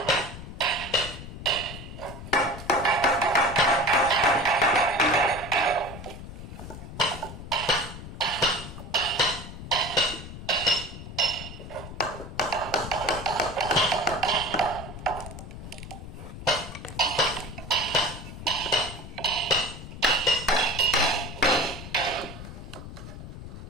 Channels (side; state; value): left; noise; rumble, 11 dB below the sound